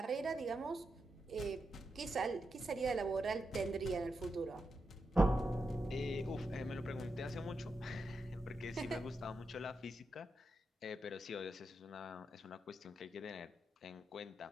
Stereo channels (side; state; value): both; normal; correlation 0.86